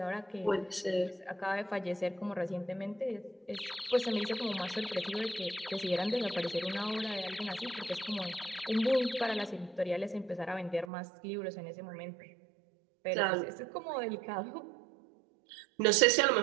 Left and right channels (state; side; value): drops out; left; at 10.9 s